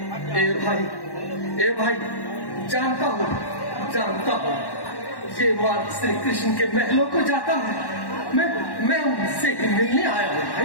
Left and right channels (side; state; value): right; late; 1.1 ms